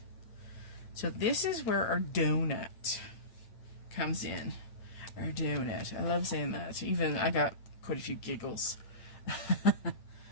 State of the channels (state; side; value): late; right; 8.8 ms